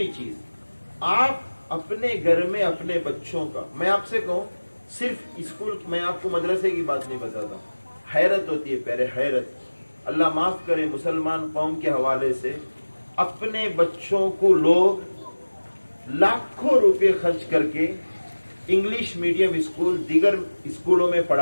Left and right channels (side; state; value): both; inverted; correlation -1.00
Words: चीज, आप अपने घर में अपने बच्चों का, मैं आपसे कहूं सिर्फ स्कूल, मैं आपको मदरसे की बात नहीं बताता, हैरत होती है प्यारे, हैरत। अल्लाह माफ करे, मुसलमान कौम के हवाले से अपने बच्चों को लोग लाखों रुपए खर्च करके इंग्लिश मीडियम स्कूल, दीगर स्कूलों में